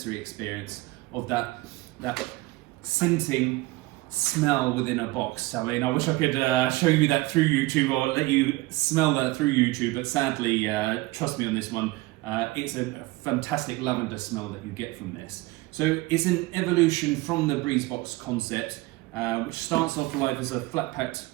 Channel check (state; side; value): quieter; left; 20.4 dB